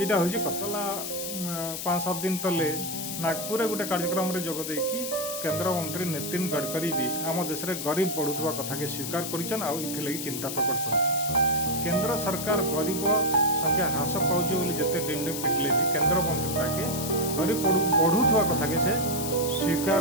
हूँ कथा 5-7 दिन तले नागपुर गोटे कार्यक्रम रे जोग देकी केंद्र मंत्री नितिन गडकरी भी आम देश में गरीब बढ़ुवा कथा के स्वीकार करिछन आ इथिलगी चिंता प्रकट करिछन। केंद्र सरकार गरीब संख्या ह्रास पाउछ बोली जते डिंडे पिटले भी केंद्र मंत्री ताके गरीब बढ़ुवा कथा के से स्वीकार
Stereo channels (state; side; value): noise; left; hiss, 5 dB below the sound